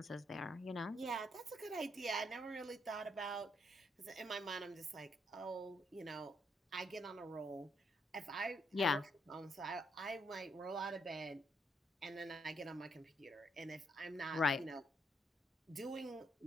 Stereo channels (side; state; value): both; normal; correlation 0.76